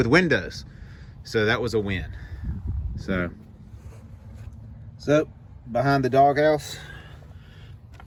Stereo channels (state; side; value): identical; both; correlation 1.00